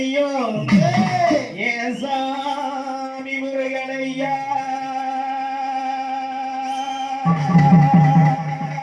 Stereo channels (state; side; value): identical; both; correlation 1.00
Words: ஏன் சாமி முருகனையா